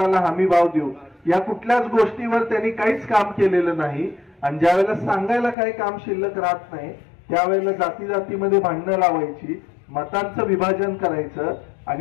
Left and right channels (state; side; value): drops out; right; at 5.6 s